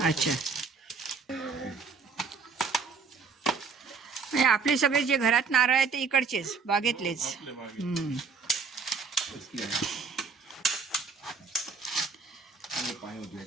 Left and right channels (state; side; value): quieter; left; 5.1 dB